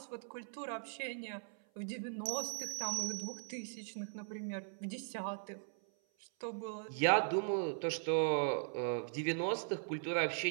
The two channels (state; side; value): silent; left; 52 dB below the other